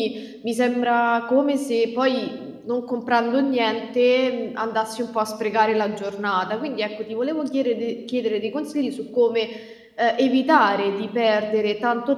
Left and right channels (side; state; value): both; identical; correlation 1.00